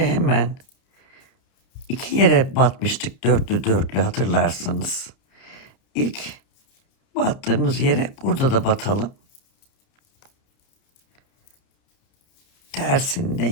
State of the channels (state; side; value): late; right; 30 ms